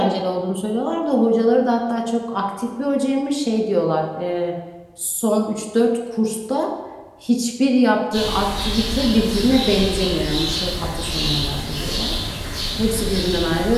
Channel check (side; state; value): both; identical; correlation 1.00